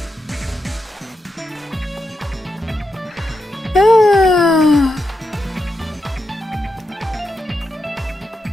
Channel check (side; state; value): both; normal; correlation 0.86